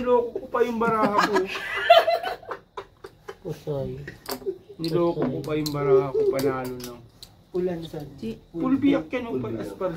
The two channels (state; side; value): identical; both; correlation 1.00